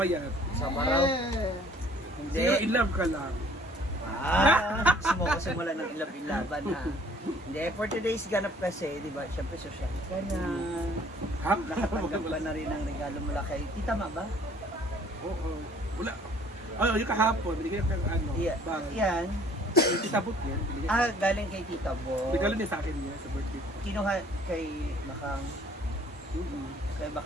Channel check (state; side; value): normal; both; correlation 0.56